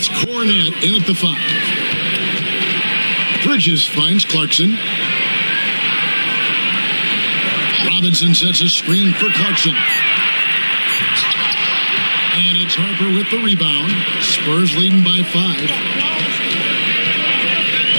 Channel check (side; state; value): both; inverted; correlation -1.00